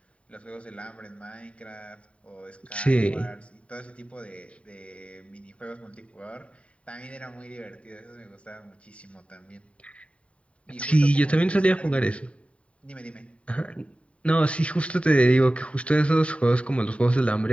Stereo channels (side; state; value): right; late; 0.063 ms